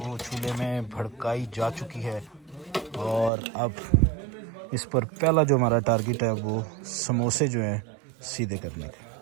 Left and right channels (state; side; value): drops out; left; at 3.3 s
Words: चूल्हे में भड़काई जा चुकी है और अब इस पर पहला जो हमारा टारगेट है वो समोसे जो हैं सीधे करने का।